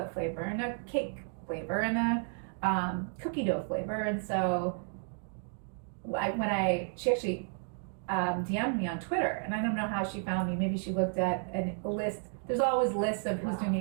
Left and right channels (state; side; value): silent; left; 56 dB below the other